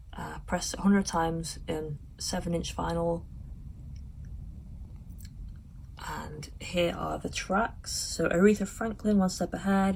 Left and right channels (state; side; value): identical; both; correlation 1.00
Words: pressed 100 times in 7-inch vinyl. And here are the tracks. So Aretha Franklin, One Step